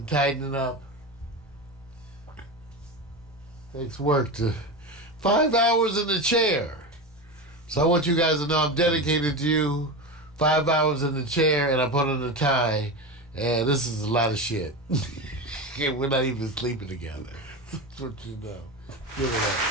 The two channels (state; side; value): normal; both; correlation 0.22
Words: tightening up. Takes work to 5 hours in the chair. So I want you guys to know I'm dedicated to you. 5 hours in the chair, and I put on a tie. And this is a lot of shit. We're not even sleeping together. That's what you know. Give it up.